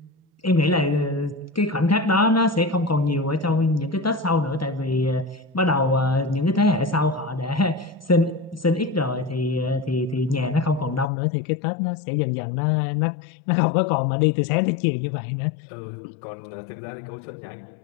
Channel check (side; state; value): right; drops out; at 11.1 s